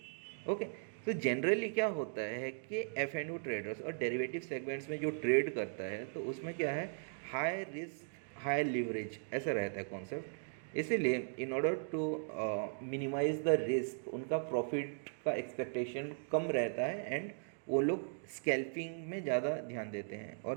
Okay, तो जनरली क्या होता है कि F&O ट्रेडर्स और डेरिवेटिव सेगमेंट्स में जो ट्रेड करता है तो उसमें क्या है, हाई रिस्क हाई लिवरेज ऐसा रहता है कॉन्सेप्ट. इसीलिए in order to minimize the risk उनका प्रॉफिट का एक्सपेक्टेशन कम रहता है एंड वो लोग स्कैल्पिंग में ज़्यादा ध्यान देते हैं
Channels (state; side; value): silent; left; digital silence